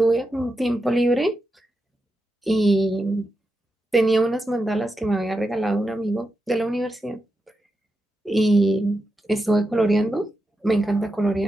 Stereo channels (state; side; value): normal; both; correlation 0.88